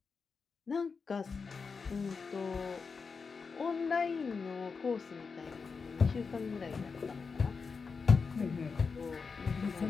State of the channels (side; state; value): right; quieter; 5.1 dB